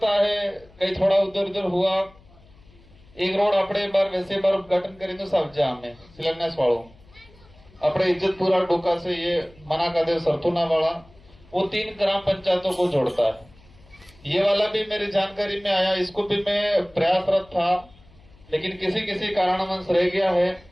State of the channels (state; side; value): noise; left; hum, 26 dB below the sound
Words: है कहीं थोड़ा उधर उधर हुआ। एक रोड अपने बार वैसे बार उद्घाटन करें तो सब जा में शिलान्यास वालों अपने इज्जतपुरा डोका से ये मना का देव सरथुना वाला वो 3 ग्राम पंचायतों को जोड़ता है। ये वाला भी मेरी जानकारी में आया, इसको भी मैं प्रयासरत था लेकिन किसी कारणवश रह गया है